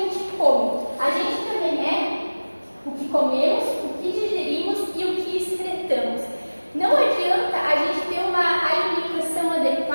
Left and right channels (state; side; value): inverted; both; correlation -1.00